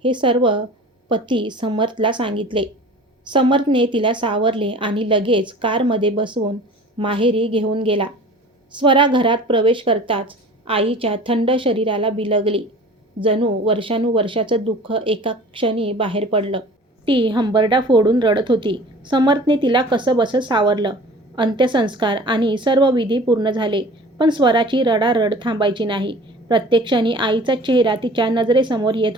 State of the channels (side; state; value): both; normal; correlation 0.43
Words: हे सर्व पती समर्थला सांगितले. समर्थने तिला सावरले आणि लगेच कारमध्ये बसवून माहेरी घेऊन गेला. स्वरा घरात प्रवेश करताच आईच्या थंड शरीराला बिलगली. जणू वर्षानुवर्षाचं दुःख एका क्षणी बाहेर पडलं. ती हंबरडा फोडून रडत होती. समर्थने तिला कसंबसं सावरलं. अंत्यसंस्कार आणि सर्व विधी पूर्ण झाले. पण स्वराची रडारड थांबायची नाही. प्रत्येक क्षणी आईचा चेहरा तिच्या नजरेसमोर येत